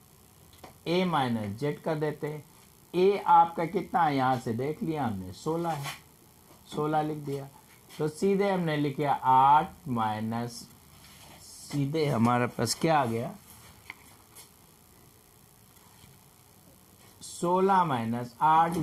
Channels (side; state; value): both; identical; correlation 1.00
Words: ए माइनस जेड कर देते हैं। ए आपका कितना है? यहाँ से देख लिया हमने, 16 है। 16 लिख दिया। तो सीधे हमने लिखा 8 माइनस, सीधे हमारे पास क्या आ गया? 16 माइनस 8,